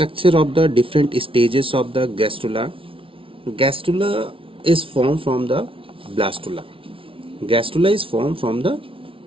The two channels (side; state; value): left; late; 0.26 ms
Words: of the different stages of the gastrula. Gastrula is formed from the blastula. Gastrula is formed from the